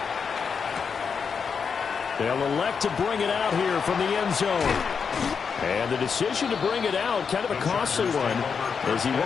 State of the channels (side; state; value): right; quieter; 6.1 dB